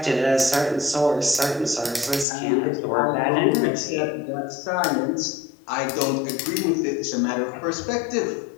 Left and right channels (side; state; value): right; drops out; at 2.2 s